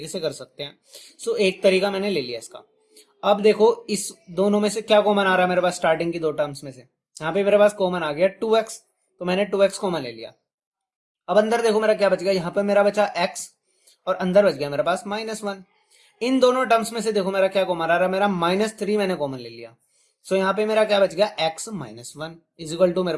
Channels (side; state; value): both; identical; correlation 1.00